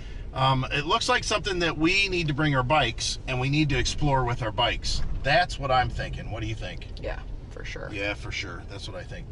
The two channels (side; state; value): both; identical; correlation 1.00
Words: It looks like something that we need to bring our bikes, and we need to explore with our bikes. That's what I'm thinking. What do you think? Yeah, for sure. Yeah, for sure. That's what I think